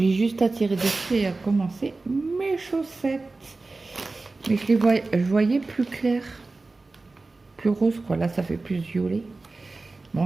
juste à tirer dessus et à commencer mes chaussettes. Mais je voyais plus clair. Plus rose, quoi. Là, ça fait plus violet.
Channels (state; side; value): quieter; left; 3.5 dB